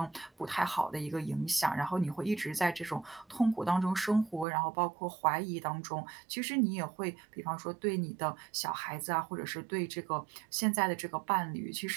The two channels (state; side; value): drops out; left; at 4.5 s